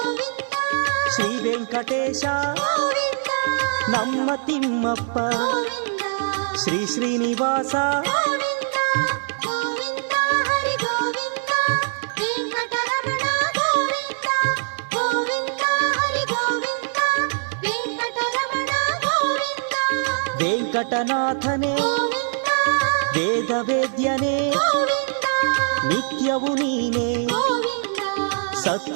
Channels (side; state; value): left; silent; digital silence